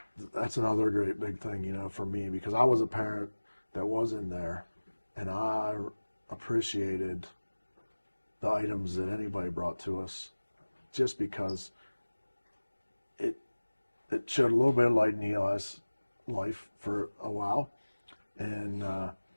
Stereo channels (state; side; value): inverted; both; correlation -1.00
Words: that's another great big thing, for me, because I was a parent that was in there, and I appreciated the items that anybody brought to us, just because it showed a little bit of light in Eli's life for a while, and